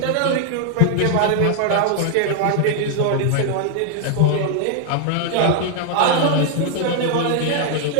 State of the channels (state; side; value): different; both; correlation 0.00